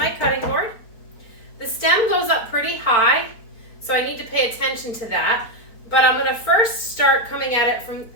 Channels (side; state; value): right; late; 4.4 ms